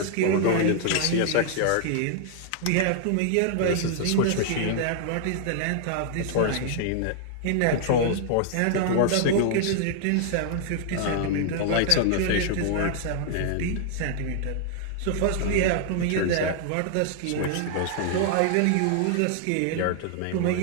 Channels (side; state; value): both; different; correlation 0.00